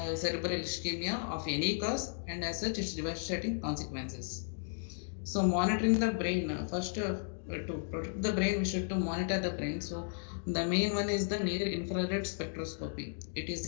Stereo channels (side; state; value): right; silent; digital silence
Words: cerebral ischemia of any cause, and as such its devastating consequences. So monitoring the brain, first to protect the brain, we should to monitor the brain. So the main one is the near infrared spectroscopy. It is